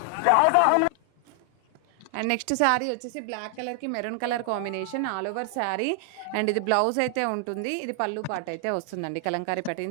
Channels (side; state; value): both; different; correlation 0.00